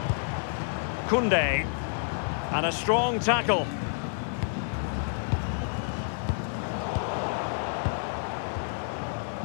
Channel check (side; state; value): right; silent; 59 dB below the other